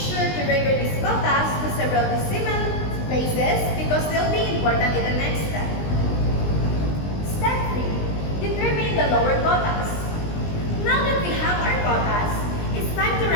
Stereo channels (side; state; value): right; late; 20 ms